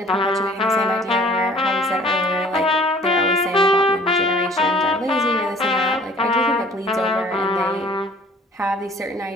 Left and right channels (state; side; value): normal; both; correlation 0.52